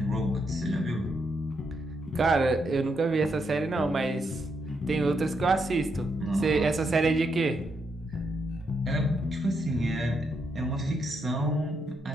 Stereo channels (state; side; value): normal; both; correlation 0.79